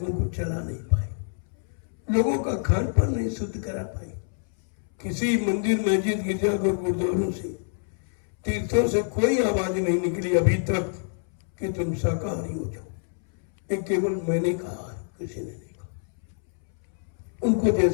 को चला नहीं पाए, लोगों का खान पान नहीं शुद्ध करा पाए। किसी मंदिर मस्जिद गिरजाघर गुरुद्वारों से, तीर्थों से कोई आवाज नहीं निकली अभी तक कि तुम शाकाहारी हो जाओ। ये केवल मैंने कहा है, किसी ने नहीं कहा। उनको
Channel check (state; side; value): silent; right; 61 dB below the other